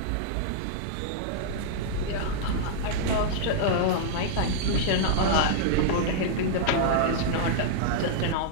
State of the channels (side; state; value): both; different; correlation -0.02